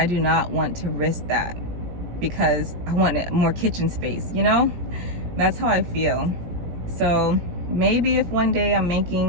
do not want to risk that. because I want more kitchen space, you know? That's how I feel. So maybe if one day I'm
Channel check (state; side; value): late; left; 17 ms